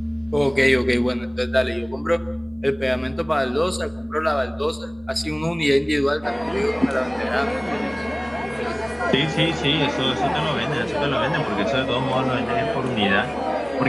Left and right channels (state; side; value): noise; right; hum, 24 dB below the sound